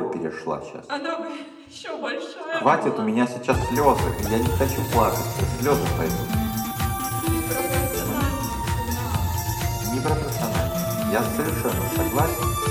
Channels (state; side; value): identical; both; correlation 1.00